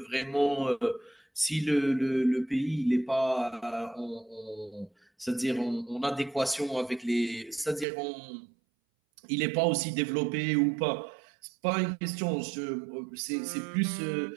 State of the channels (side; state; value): left; drops out; at 7.9 s